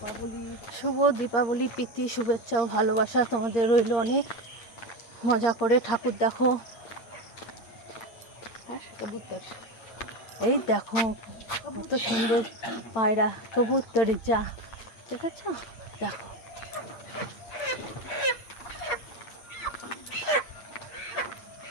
শুভ দীপাবলি, প্রীতি শুভেচ্ছা ও ভালোবাসা তোমাদের রইল অনেক। মজা করে ঠাকুর দেখো। এই দেখো কত সুন্দর পায়রা কবুতরি যা দেখেছ, দেখো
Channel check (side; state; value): right; late; 8.6 ms